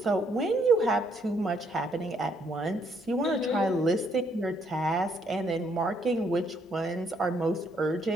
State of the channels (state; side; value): normal; both; correlation 0.70